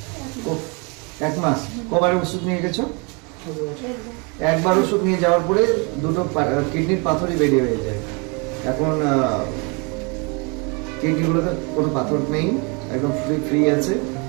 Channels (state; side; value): quieter; left; 31.7 dB